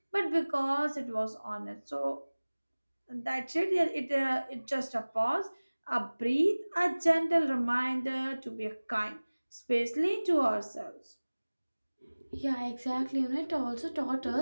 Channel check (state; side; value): inverted; both; correlation -1.00